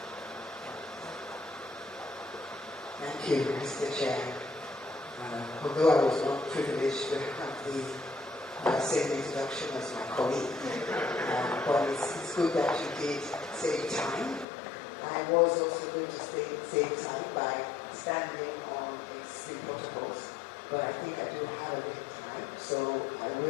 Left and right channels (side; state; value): right; drops out; at 14.5 s